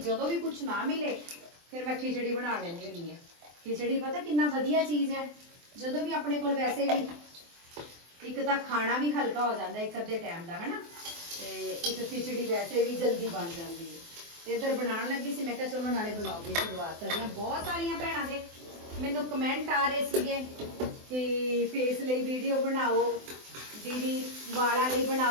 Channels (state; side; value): late; left; 24 ms